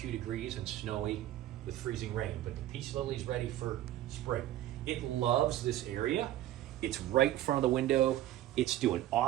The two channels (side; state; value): left; quieter; 13.7 dB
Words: degrees and snowy with freezing rain, but the peace lily's ready for spring. It loves this area. It's right in front of the window. It's doing